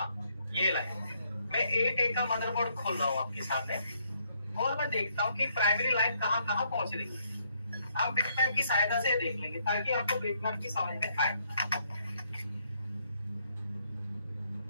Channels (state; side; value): inverted; both; correlation -0.72